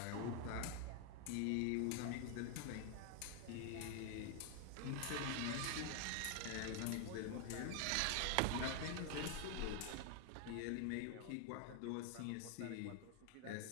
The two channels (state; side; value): different; both; correlation 0.00